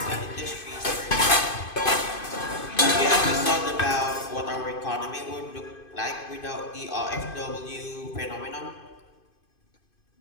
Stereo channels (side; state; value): right; late; 2.5 ms